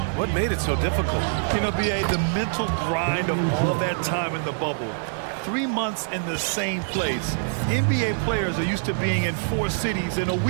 what made it so difficult? You know, B.A., the mental grind of all that time in the bubble. 3 months in the same place. NBA players are used to being in 4 cities in a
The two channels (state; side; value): silent; left; digital silence